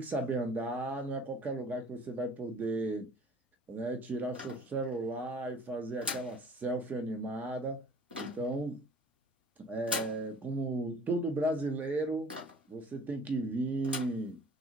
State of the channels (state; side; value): normal; both; correlation 0.49